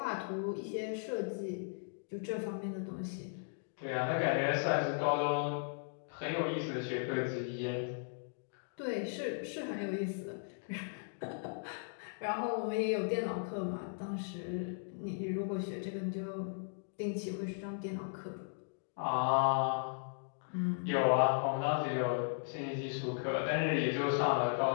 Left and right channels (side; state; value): right; silent; digital silence